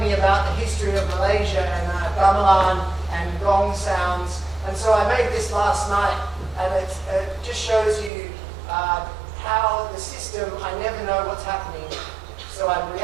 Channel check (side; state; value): left; drops out; at 8.1 s